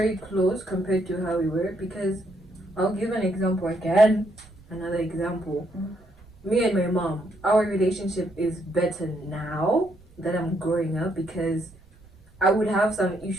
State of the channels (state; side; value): noise; right; rumble, 26 dB below the sound